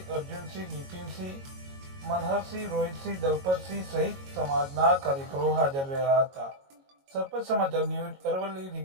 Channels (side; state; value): left; late; 22 ms